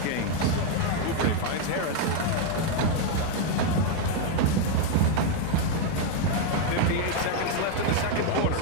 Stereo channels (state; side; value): different; both; correlation 0.01